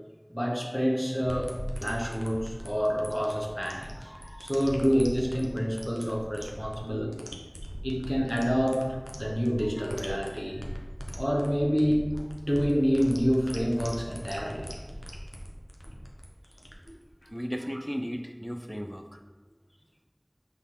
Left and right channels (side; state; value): both; identical; correlation 1.00